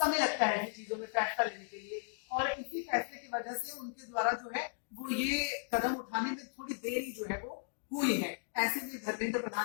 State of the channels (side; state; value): right; silent; digital silence